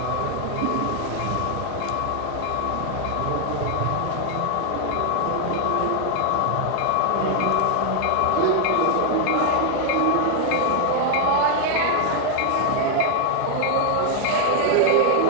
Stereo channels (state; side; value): different; both; correlation 0.00